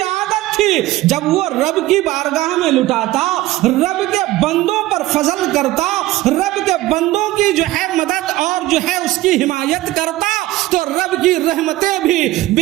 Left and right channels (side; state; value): left; quieter; 16.9 dB